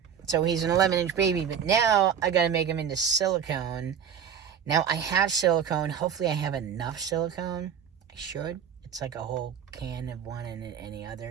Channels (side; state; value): left; quieter; 8.0 dB